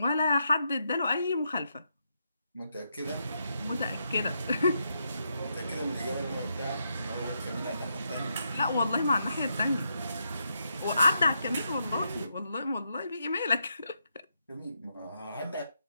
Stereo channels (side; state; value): both; inverted; correlation -0.81